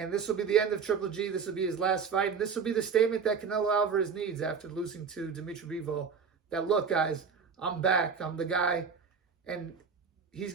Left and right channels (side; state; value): left; quieter; 6.0 dB